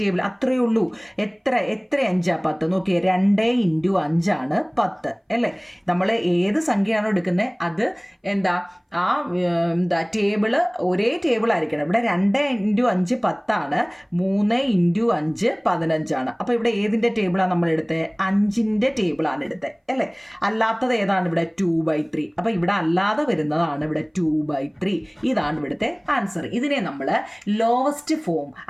അത്രയേ ഉള്ളൂ. എത്ര 5 10? നോക്കിയേ, 2 × 5 10 അല്ലേ? നമ്മൾ ഏത് സംഖ്യയാണോ എടുക്കുന്നത് അത് എന്താ ടേബിള് ഒരേ ടേബിൾ ആയിരിക്കണം. ഇവിടെ 2 × 5 10, 3 × 5 15. അപ്പോൾ ഇവിടെ ഏതിൻ്റെ ടേബിളാണ് നമ്മൾ എടുത്തത്? 5ൻ്റെ ടേബിളാണ് എടുത്തത് അല്ലേ? അല്ലാത്തത് ഏതാണ്? ഇവിടെ 2/3. അപ്പോൾ ഇവിടെ അല്ലാതെ വരുന്നതാണ് ഇവിടെ 2/3. ഇതാണ് ഇവിടുത്തെ ആൻസർ. ഇതിനെ നമ്മൾ ലോവസ്റ്റ് ഫോം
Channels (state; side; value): identical; both; correlation 1.00